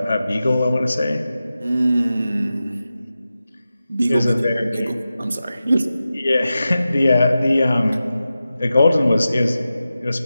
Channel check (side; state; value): both; inverted; correlation -0.93